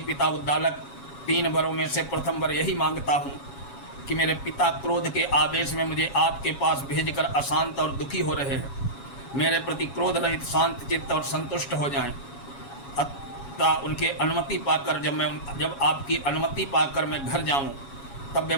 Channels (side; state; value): right; late; 7.2 ms